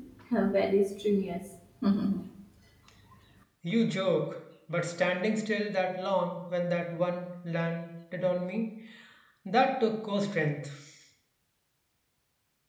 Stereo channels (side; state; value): both; identical; correlation 1.00